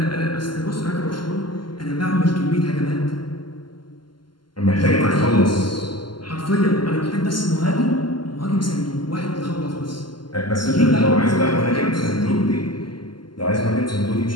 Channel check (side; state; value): right; late; 0.71 ms